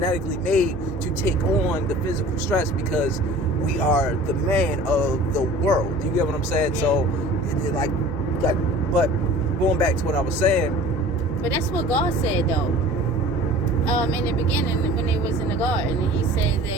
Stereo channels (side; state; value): both; normal; correlation 0.43